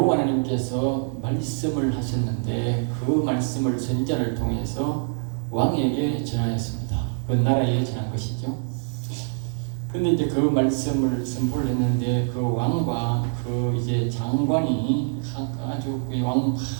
하나님께서 말씀을 하셨는데 그 말씀을 선지자를 통해서 왕에게 전하였습니다. 그 나라에 전한 것이죠. 근데 이제 그 말씀을 선포를 했는데 그 왕과 그 이제 장관이 아주 그 왕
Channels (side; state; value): left; silent; 62 dB below the other